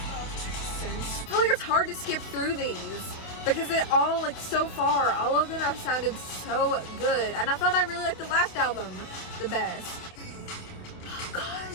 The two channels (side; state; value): right; late; 27 ms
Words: I feel like it's hard to skip through these, because they all, like, so far, all of them have sounded so good. And I thought I really liked the last album the best. Oh,